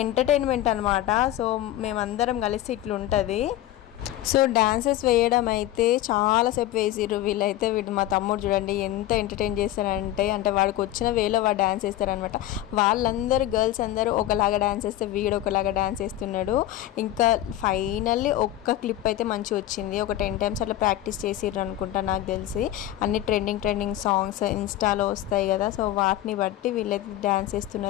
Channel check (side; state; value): right; quieter; 13.8 dB